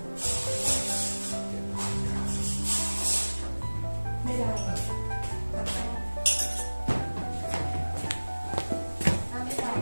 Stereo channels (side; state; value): both; inverted; correlation -1.00